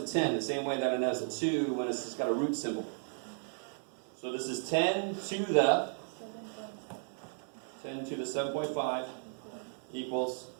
10, the same way that it has a 2 when it's just got a root symbol. So this is 10 to the 7.5 equals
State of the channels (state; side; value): silent; left; 55 dB below the other